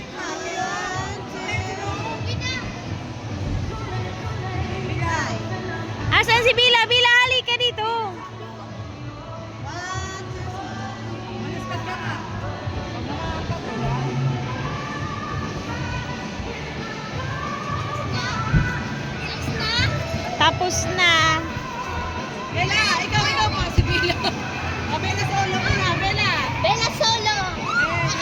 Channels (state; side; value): identical; both; correlation 1.00